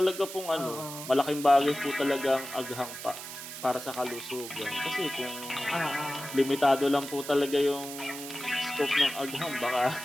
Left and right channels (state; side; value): noise; right; hiss, 10 dB below the sound